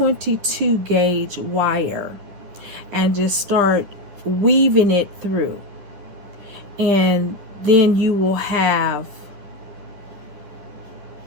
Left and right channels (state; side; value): late; left; 10 ms